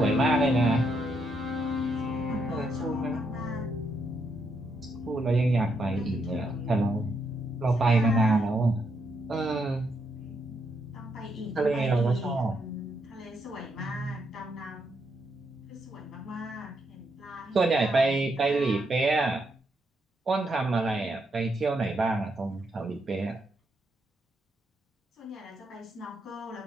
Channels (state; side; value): normal; both; correlation 0.78